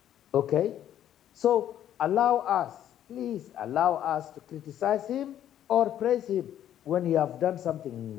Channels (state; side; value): quieter; right; 11.0 dB